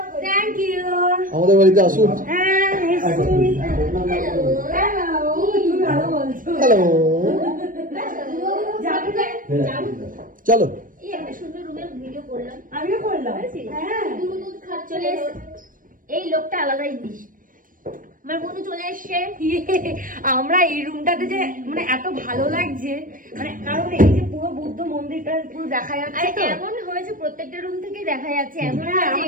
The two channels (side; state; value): left; late; 0.40 ms